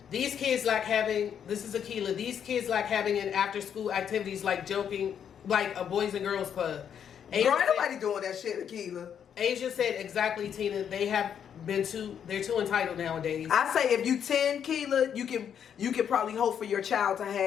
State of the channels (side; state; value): right; quieter; 8.4 dB